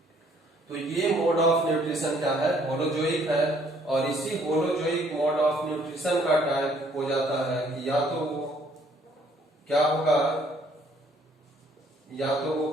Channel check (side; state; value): both; normal; correlation 0.63